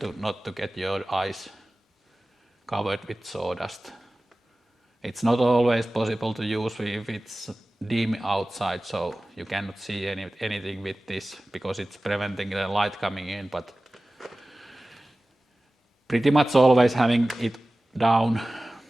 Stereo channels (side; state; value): both; normal; correlation 0.97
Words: not to get your eyes covered with sawdust. It's not always possible to use if it's dim outside, so you cannot see anything with this because it's preventing the light coming in, but pretty much always having it down.